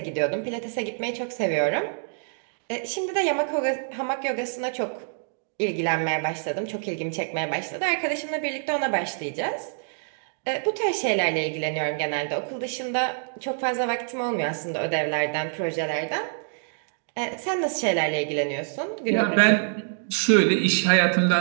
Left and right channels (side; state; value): left; silent; digital silence